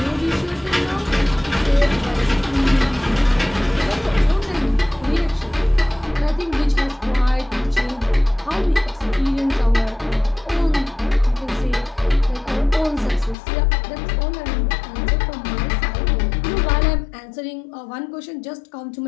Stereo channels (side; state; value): right; drops out; at 13.4 s